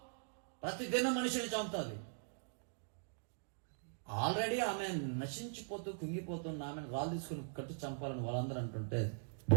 ప్రతిదినం మనిషిని చంపుతుంది. ఆల్రెడీ ఆమె నశించిపోతూ కుంగిపోతున్న ఆమెను రాళ్ళు తీసుకుని కట్టు చంపాలని వాళ్ళందరూ అంటుంటే,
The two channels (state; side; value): silent; left; digital silence